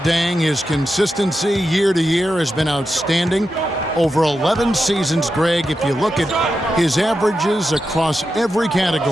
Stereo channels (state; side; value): normal; both; correlation 0.88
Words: his consistency year to year has been outstanding. Over 11 seasons, Greg, if you look at his averages across every